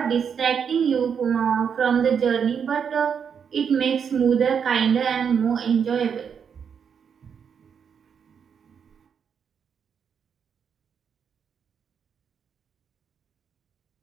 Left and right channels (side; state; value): left; quieter; 7.1 dB